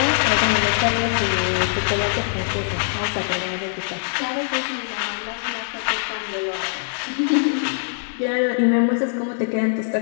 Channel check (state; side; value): silent; right; digital silence